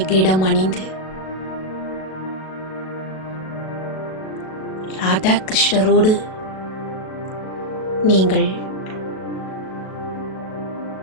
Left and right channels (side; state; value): right; late; 37 ms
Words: கிரீடம் அணிந்து ராதா கிருஷ்ணரோடு நீங்கள்